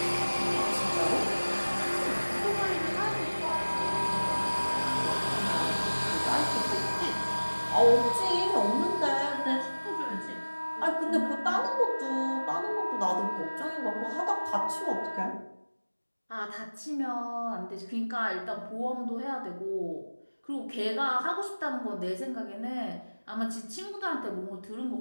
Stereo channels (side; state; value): both; inverted; correlation -1.00